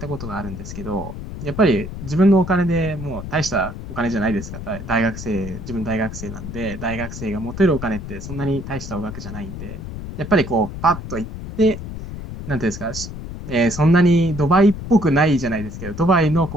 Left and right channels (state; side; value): noise; left; rumble, 9 dB below the sound